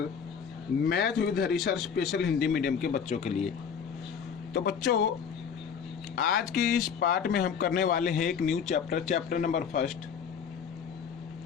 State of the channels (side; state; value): right; quieter; 7.1 dB